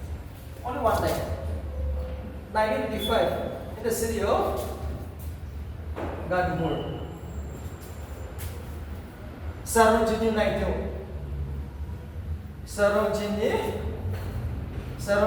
Only one time. 1925 in the city of Gandhipur. Sarojini Naidu. Sarojini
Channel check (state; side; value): identical; both; correlation 1.00